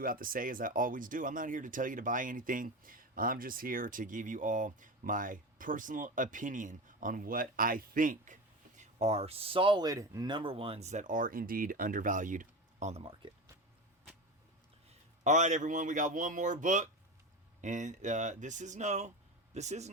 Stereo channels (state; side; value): normal; both; correlation 0.24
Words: have to say, as I always do, I'm not here to tell you to buy anything. I'm just here to give you all my personal opinion on what I think are solid number 1s that are indeed undervalued on the market. All right, everyone, we got one more book, and this is no